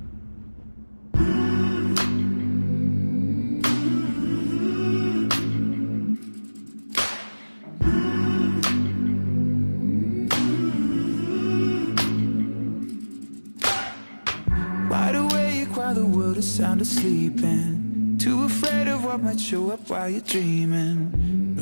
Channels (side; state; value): both; inverted; correlation -1.00